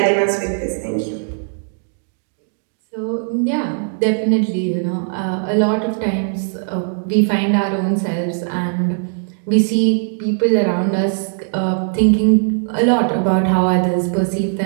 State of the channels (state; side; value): silent; left; digital silence